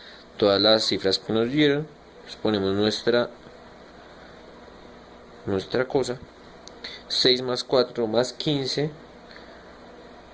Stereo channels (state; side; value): identical; both; correlation 1.00